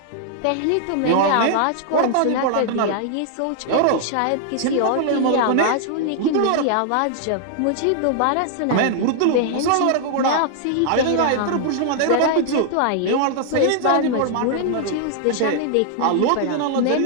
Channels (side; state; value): both; different; correlation -0.01